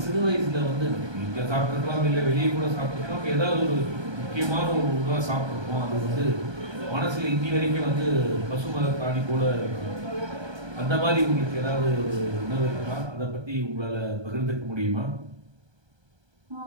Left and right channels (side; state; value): left; late; 1.3 ms